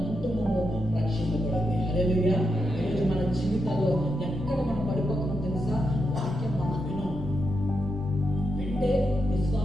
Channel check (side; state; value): both; normal; correlation 0.85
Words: కుటుంబము రక్షింపబడింది. హల్లెలూయా. ఈరోజు మన జీవితాల్లో ఎక్కడ మనం పడిపోతున్నాం తెలుసా? వాక్యం మనం వింటే